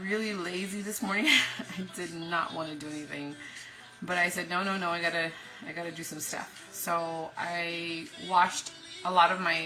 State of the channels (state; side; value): identical; both; correlation 1.00